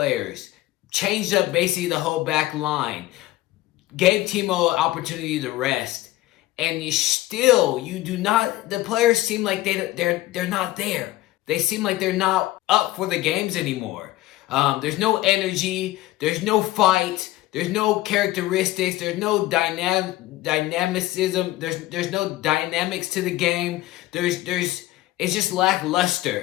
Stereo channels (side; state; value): right; quieter; 16.7 dB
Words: changed up basically the whole back line, gave Timo an opportunity to rest, and the players seem like they're not there. They seem like they're not up for the games anymore. There's no energy, there's no fight, there's no characteristics, there's no dynamicism, there's no dynamics to the game. It's just